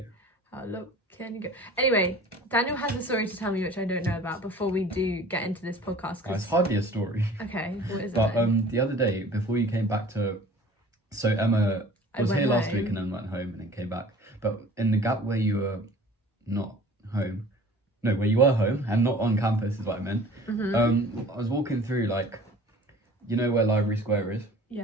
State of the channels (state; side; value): normal; both; correlation 0.46